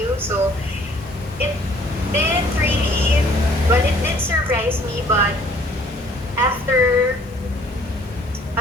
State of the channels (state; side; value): normal; both; correlation 0.58